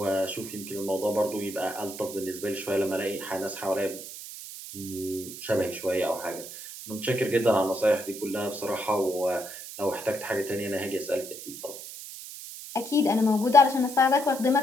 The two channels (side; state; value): right; noise; hiss, 11 dB below the sound